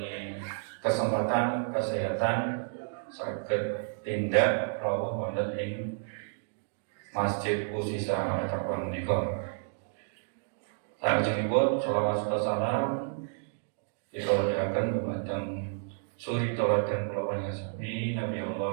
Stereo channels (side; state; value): left; silent; digital silence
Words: kesempatan kesehatan saged tindak rawuh wonten ing Masjid Usisa Taqwa menika. Salajengipun shalawat serta salam kita panjatkan dumateng suri tauladan kula panjenengan Nabi